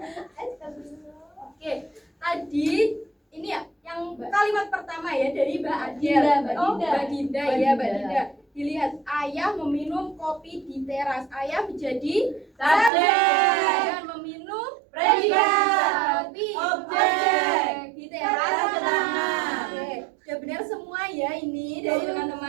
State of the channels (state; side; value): drops out; left; at 12.9 s